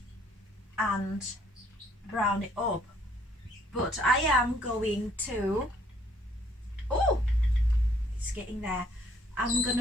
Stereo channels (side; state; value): both; normal; correlation 0.63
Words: and brown it up. But I am going to, oh, it's getting there. I'm